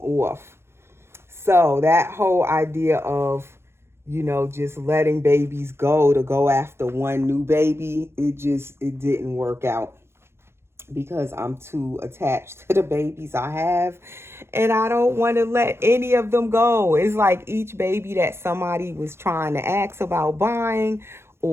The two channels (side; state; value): left; late; 0.12 ms